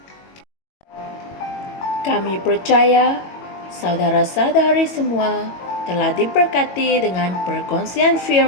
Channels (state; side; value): late; right; 22 ms